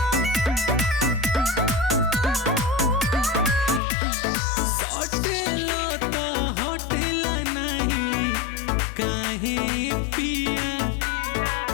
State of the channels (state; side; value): drops out; right; at 3.8 s